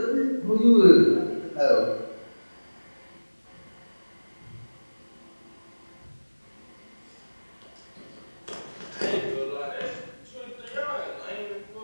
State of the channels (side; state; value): both; inverted; correlation -1.00